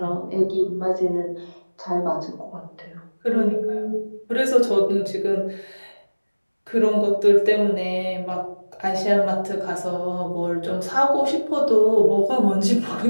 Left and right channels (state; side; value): inverted; both; correlation -1.00